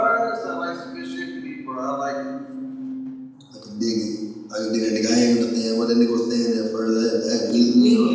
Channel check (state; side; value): identical; both; correlation 1.00